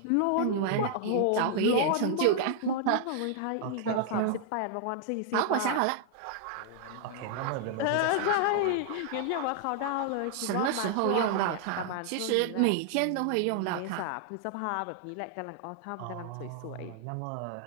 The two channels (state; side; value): different; both; correlation 0.00